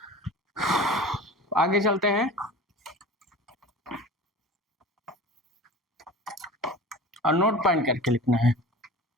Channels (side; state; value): both; normal; correlation 0.37